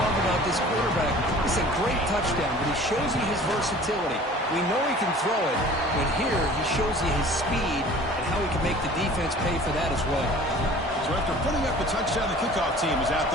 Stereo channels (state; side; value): normal; both; correlation 0.46